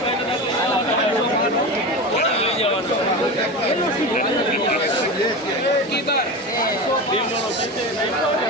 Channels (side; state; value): both; normal; correlation 0.25